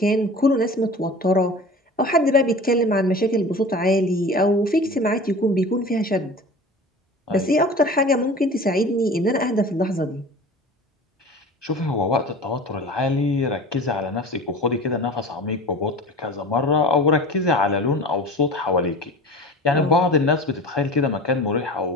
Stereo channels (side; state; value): both; normal; correlation 0.37